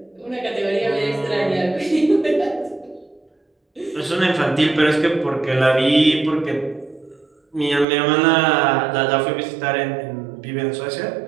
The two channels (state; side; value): drops out; left; at 7.9 s